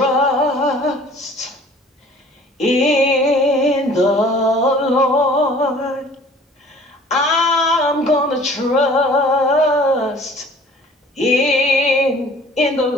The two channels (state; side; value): normal; both; correlation 0.50